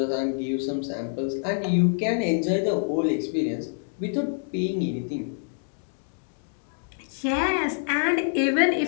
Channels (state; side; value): silent; right; digital silence